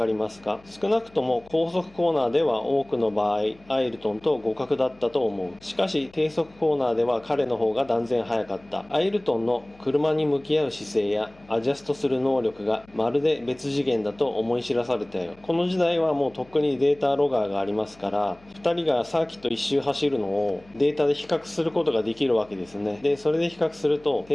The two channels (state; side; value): noise; left; hum, 27 dB below the sound